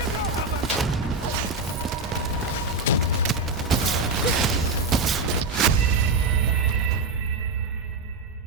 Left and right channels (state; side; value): quieter; left; 3.4 dB